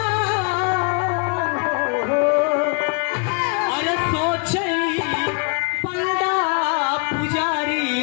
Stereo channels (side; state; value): right; quieter; 35.3 dB